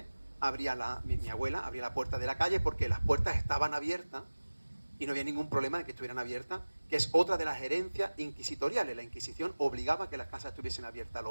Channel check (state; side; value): inverted; both; correlation -1.00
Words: mi abuela abría la puerta de la calle porque las puertas estaban abiertas y no había ningún problema de que estuvieran abiertas, que es otra de las herencias inquisitoriales. La Inquisición obligaba a que las casas estuviesen abiertas